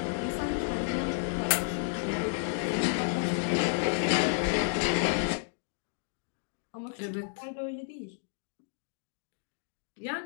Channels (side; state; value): right; silent; digital silence